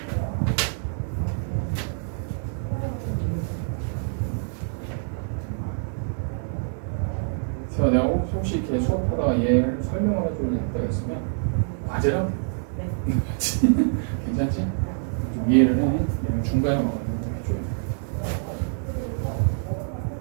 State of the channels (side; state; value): left; silent; 58 dB below the other